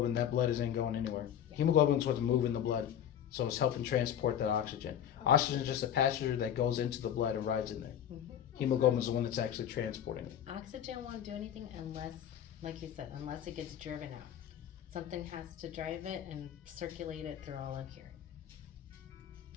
that blood isn't going anywhere. Hemoglobin is what's moving the blood, so it's helping transport that oxygen. Oxygen is just a passenger that goes into the blood and rides in there. Hemoglobin is the one that's actually transporting it. Oxygen won't do anything unless, like you said, unless it gets driven out. Something has to drive it and circulate it through all of here.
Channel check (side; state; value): right; quieter; 9.8 dB